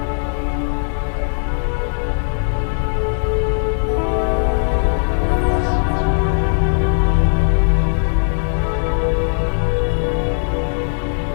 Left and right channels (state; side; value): silent; right; 67 dB below the other